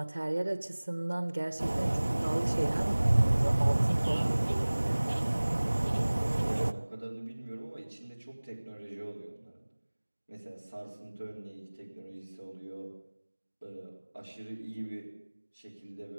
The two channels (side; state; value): both; inverted; correlation -1.00